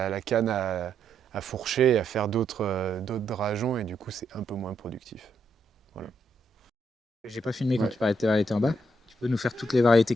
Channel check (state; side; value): normal; both; correlation 0.77